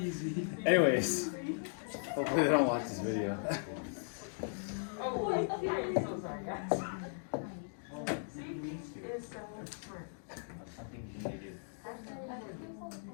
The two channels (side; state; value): right; silent; digital silence